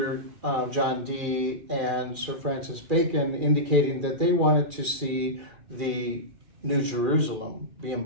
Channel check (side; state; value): left; late; 2.4 ms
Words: John Dee and Sir Francis Bacon indicating that they wanted to see the New Jerusalem be